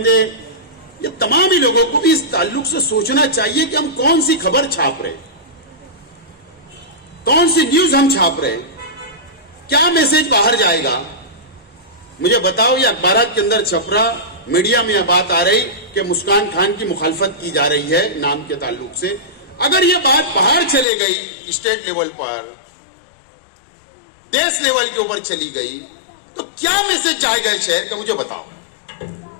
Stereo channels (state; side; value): drops out; right; at 20.9 s